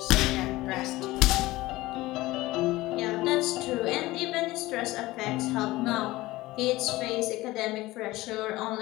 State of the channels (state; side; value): quieter; right; 18.8 dB